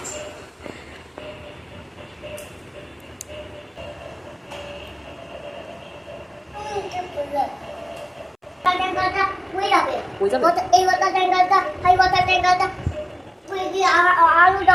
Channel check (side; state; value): both; identical; correlation 1.00